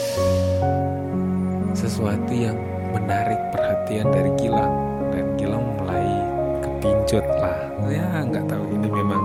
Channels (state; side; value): identical; both; correlation 1.00